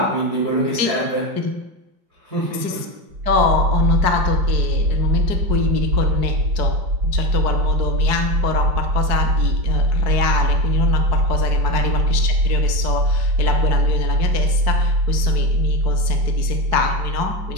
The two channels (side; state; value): left; late; 4.7 ms